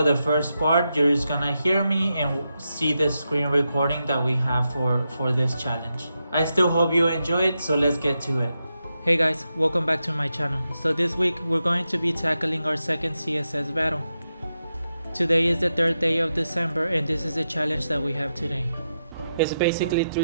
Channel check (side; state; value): both; inverted; correlation -0.87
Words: the first part, you're just gonna hear me and see the screen recording that we have for this challenge. I still hope you enjoy it, so let's get to it. Hey guys, welcome back to my channel. So this week, we're going to be tackling our second CSS battle. Today is the third day of December, and this is the challenge that we have today. It's basically